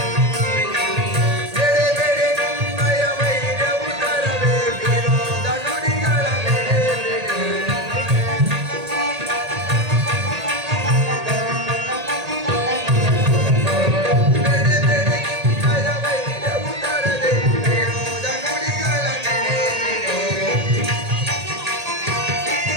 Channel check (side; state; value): left; late; 1.8 ms